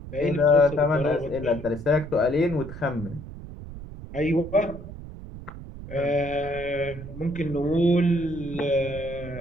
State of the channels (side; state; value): right; noise; rumble, 12 dB below the sound